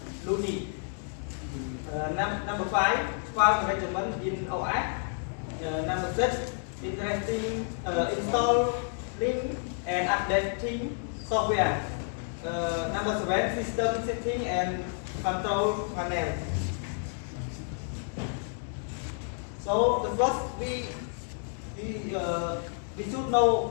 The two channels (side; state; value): right; silent; 58 dB below the other